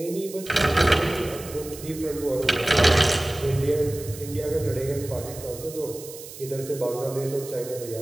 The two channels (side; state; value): right; noise; hiss, 14 dB below the sound